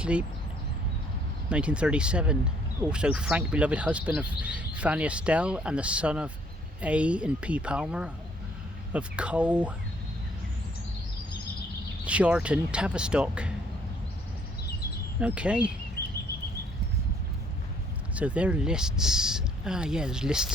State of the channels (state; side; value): normal; both; correlation 0.64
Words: 1937. Also Frank, beloved husband of Fanny Estelle and the son of A and P Palmer of Cole Charton, Tavistock. Okay. So there are lists. Ah, yeah, there's